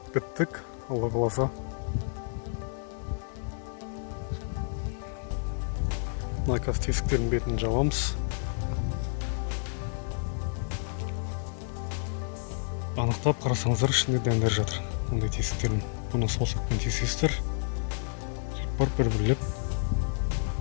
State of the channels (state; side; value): silent; right; 58 dB below the other